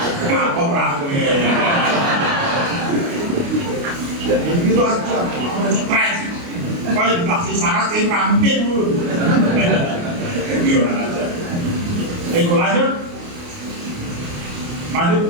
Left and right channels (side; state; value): left; late; 29 ms